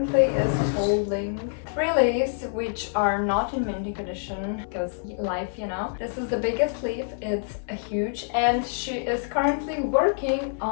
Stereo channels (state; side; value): silent; right; 61 dB below the other